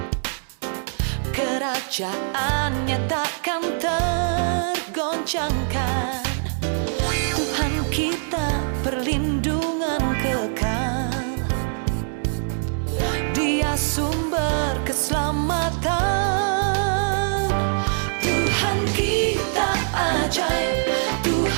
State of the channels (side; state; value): left; silent; digital silence